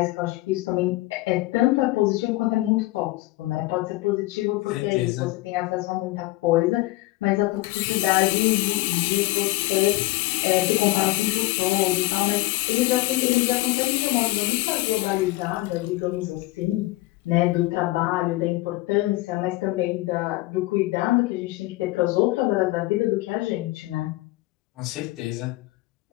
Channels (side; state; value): right; quieter; 19.5 dB